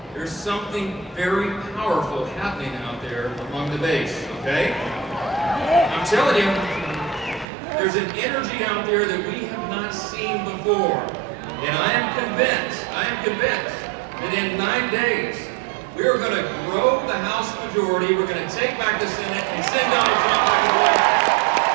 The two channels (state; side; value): drops out; left; at 7.5 s